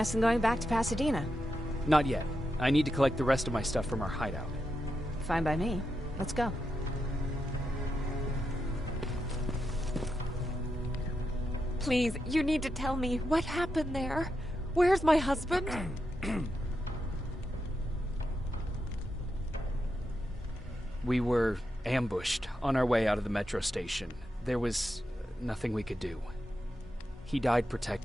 and going back to Pasadena. Not yet. I need to collect the rest of my stuff from our hideout. Fine by me. Let's go. Please, you need to tell me what happened there. Where's my husband? We were ambushed on our way out of the metro station. There was nothing we could do. He died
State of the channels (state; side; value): normal; both; correlation 0.86